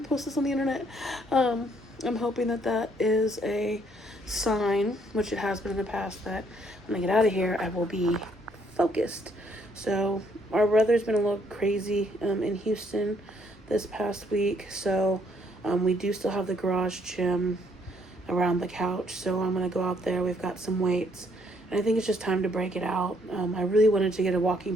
posting this on the internet. I'm hoping that is a sign, which it has been in the past, that when I get out of here, I will be focused. So our weather's been a little crazy in Houston this past week. So we do still have the garage gym around the couch. So I'm going to go out there. We've got some weights. And I think it's just time to break it out. I really wanted to get a walking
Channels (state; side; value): normal; both; correlation 0.68